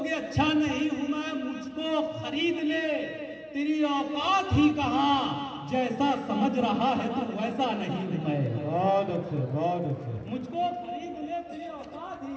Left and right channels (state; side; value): identical; both; correlation 1.00